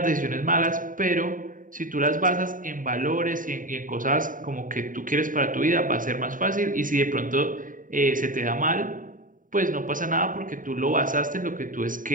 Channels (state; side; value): late; left; 0.39 ms